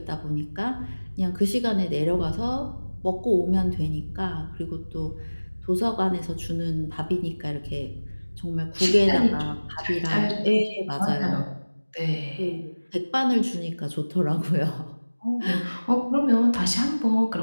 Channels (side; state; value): both; inverted; correlation -1.00